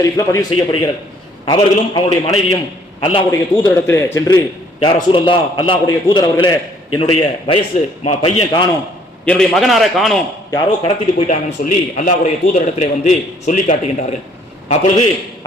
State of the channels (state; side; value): normal; both; correlation 0.62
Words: பதிவு செய்யப்படுகிறது. அவர்களும் அவருடைய மனைவியும் அல்லாஹ்வுடைய தூதரிடத்திலே சென்று, யா ரசூலல்லாஹ், அல்லாஹ்வுடைய தூதர் அவர்களே, என்னுடைய வயசு பையன் காணோம், என்னுடைய மகனார காணோம், யாரோ கடத்திட்டு போயிட்டாங்கன்னு சொல்லி அல்லாஹ்வுடைய தூதரிடத்திலே சொல்லி காட்டுகின்றார்கள். அப்பொழுது